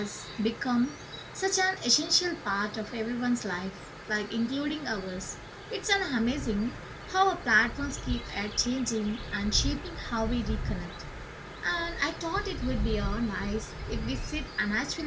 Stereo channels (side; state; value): both; identical; correlation 1.00